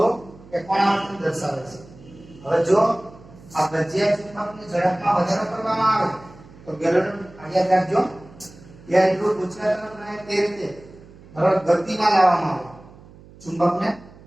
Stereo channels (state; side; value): noise; right; hum, 22 dB below the sound